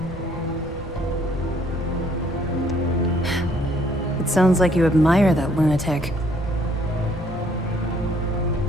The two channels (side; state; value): both; normal; correlation 0.64